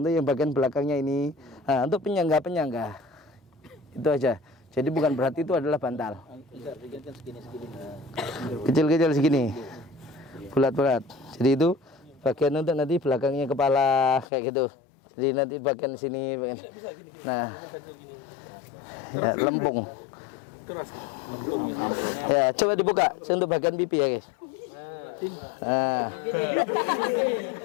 yang bagian belakangnya ini. Nah, untuk penyangga itu aja. Jadi bukan berarti itu adalah bantal. Kecil-kecil segini, bulat-bulat. Jadi itu bagian untuk nanti belakangnya kepala kayak gitu. Jadi nanti bagian sini, nah, ya, lempung. Ya, coba dibuka untuk bagian pipi ya guys. Nah,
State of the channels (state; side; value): drops out; right; at 14.2 s